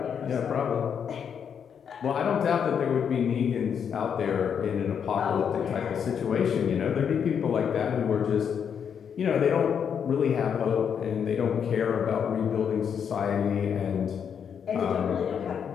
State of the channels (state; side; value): quieter; right; 7.6 dB